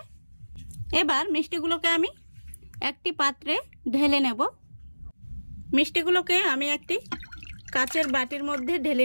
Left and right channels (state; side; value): inverted; both; correlation -1.00